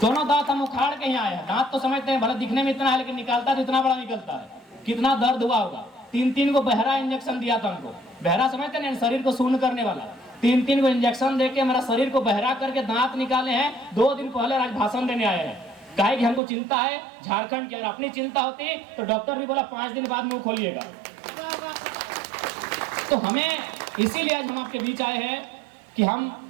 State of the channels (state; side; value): drops out; left; at 16.4 s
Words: दोनों दांत हम उखाड़ के यहाँ आए हैं। दांत तो समझते हैं भले दिखने में इतना है, लेकिन निकालता तो इतना बड़ा निकलता है। कितना दर्द हुआ होगा। 3-3 को बहरा इंजेक्शन दिया था हमको। बहरा समझते हैं, शरीर को शून्य करने वाला। 3-3 को इंजेक्शन देके मेरा शरीर को बहरा करके दांत निकाले हैं। 2 दिन पहले आज भाषण देने आए हैं। कहे कि हमको चिंता है झारखंड की। अगर अपनी चिंता होती तो डॉक्टर भी बोला 5 दिन बाद मुंह खोलिएगा। तो हमें इसीलिए आज हम आपके बीच आए हैं कि हम